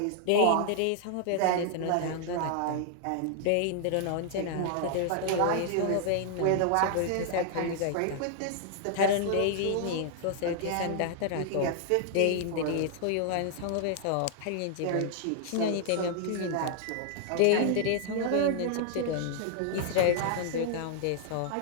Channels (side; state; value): both; different; correlation -0.01